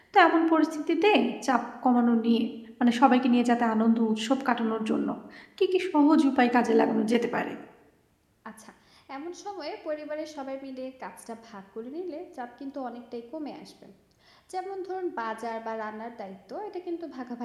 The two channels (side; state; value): both; identical; correlation 1.00